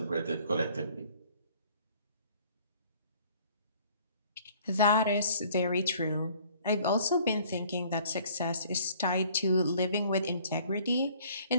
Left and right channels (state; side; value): inverted; both; correlation -0.56